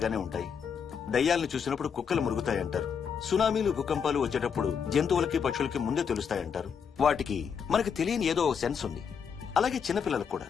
ఉంటాయి. దయ్యాలను చూసినప్పుడు కుక్కలు మురుగుతాయంటారు. సునామీలు భూకంపాలు వచ్చేటప్పుడు జంతువులకి పక్షులకి ముందే తెలుస్తాయంటారు. వాటికి మనకు తెలియని ఏదో సెన్స్ ఉంది. అలాగే చిన్నపిల్లలకు కూడా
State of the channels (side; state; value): right; quieter; 6.8 dB